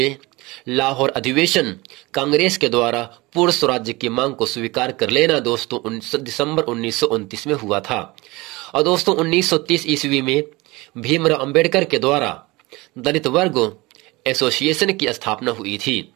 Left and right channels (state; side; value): quieter; left; 22.5 dB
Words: लाहौर अधिवेशन कांग्रेस के द्वारा पूर्ण स्वराज्य की मांग को स्वीकार कर लेना दोस्तों दिसंबर 1929 में हुआ था। और दोस्तों 1930 ईस्वी में भीमराव अंबेडकर के द्वारा दलित वर्ग एसोसिएशन की स्थापना हुई थी।